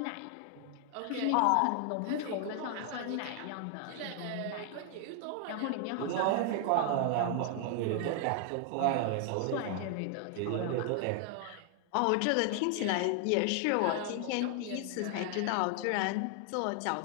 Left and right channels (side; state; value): both; different; correlation 0.00